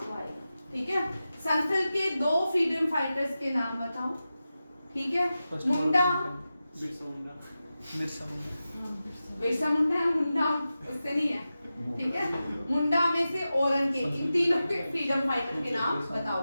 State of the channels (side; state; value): both; inverted; correlation -0.93